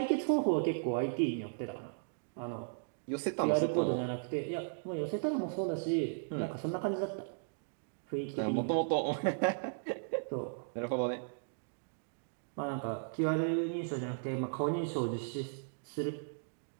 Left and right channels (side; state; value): left; silent; digital silence